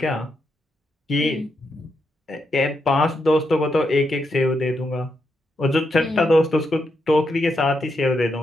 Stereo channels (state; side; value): normal; both; correlation 0.82